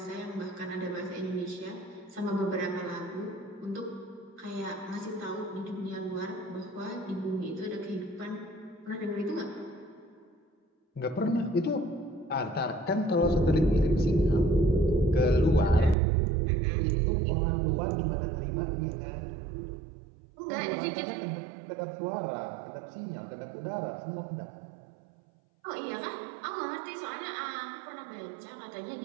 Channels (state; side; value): drops out; left; at 16.0 s